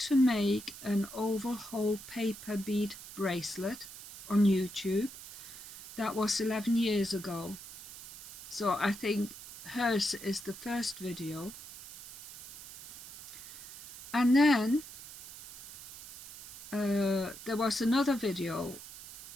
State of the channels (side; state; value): right; noise; hiss, 15 dB below the sound